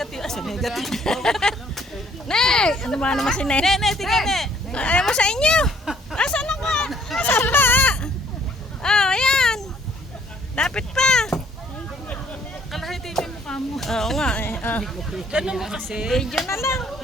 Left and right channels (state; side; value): normal; both; correlation 0.62